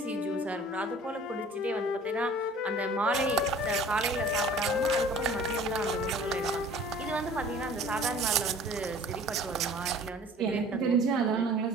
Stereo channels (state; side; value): normal; both; correlation 0.48